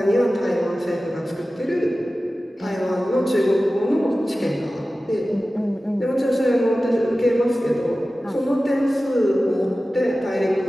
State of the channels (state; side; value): normal; both; correlation 0.95